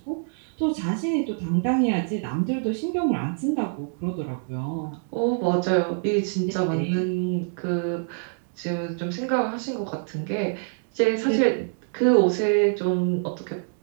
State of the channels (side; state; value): left; silent; digital silence